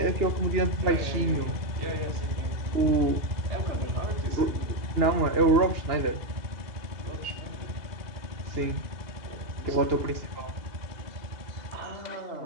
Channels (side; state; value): left; late; 2.8 ms